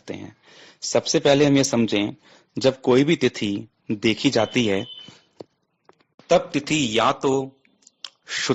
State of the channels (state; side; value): identical; both; correlation 1.00